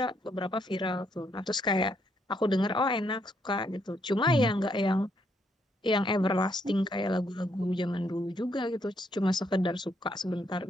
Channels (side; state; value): both; normal; correlation 0.74